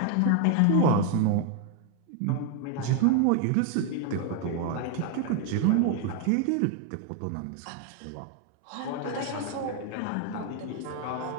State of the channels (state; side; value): different; both; correlation 0.01